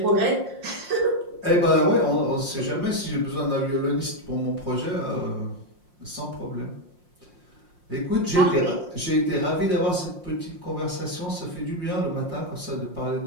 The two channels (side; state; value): left; late; 5.6 ms